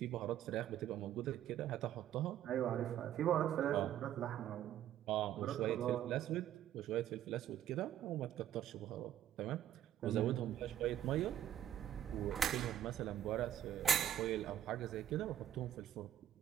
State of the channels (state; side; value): quieter; left; 11.1 dB